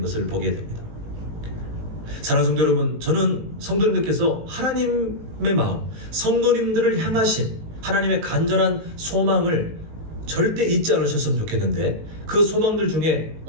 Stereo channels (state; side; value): late; left; 19 ms